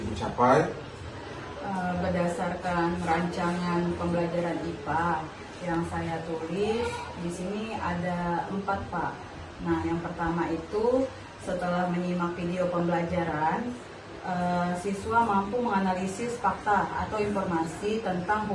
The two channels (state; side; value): identical; both; correlation 1.00